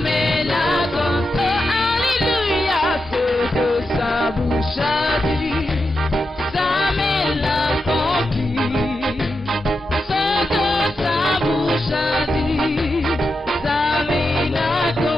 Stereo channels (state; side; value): normal; both; correlation 0.88